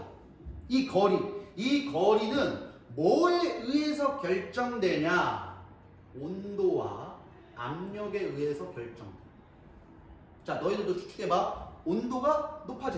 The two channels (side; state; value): both; identical; correlation 1.00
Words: 이 거리는 뭐에 의해서 결정되냐? 온도와 압력에 의해서 결정돼. 자, 너희들도 추측해봐. 온도가